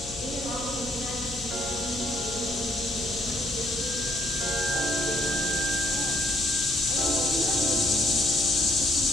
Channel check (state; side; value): noise; left; hum, 14 dB below the sound